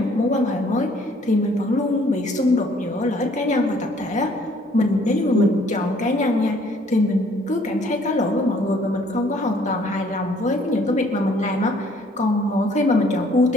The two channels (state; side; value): normal; both; correlation 0.60